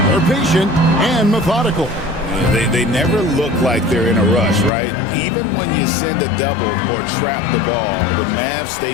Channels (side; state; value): right; drops out; at 4.7 s